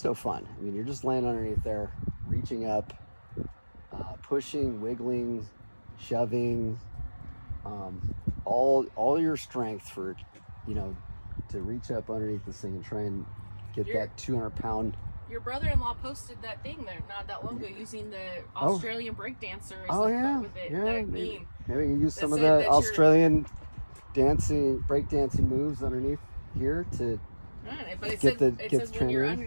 no fun. I mean, you're just laying underneath there, reaching up, pushing, wiggling, shoving, all your strength for, to reach up underneath this thing and try and get that 200-pound. Your brother-in-law posted that thing there not that long ago using the Australian breakdancer. Oh yeah, with it, yeah. that Maybe meme. you use some of the Australian breakdancing moves underneath here to but it get says the when you're in.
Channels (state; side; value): inverted; both; correlation -1.00